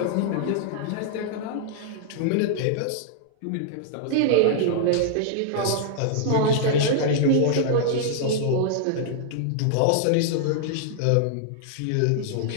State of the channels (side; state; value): both; different; correlation -0.01